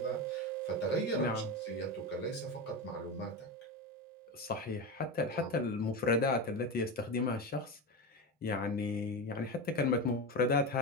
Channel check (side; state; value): both; normal; correlation 0.19